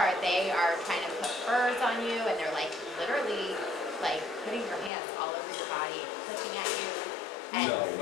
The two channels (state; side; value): drops out; right; at 4.9 s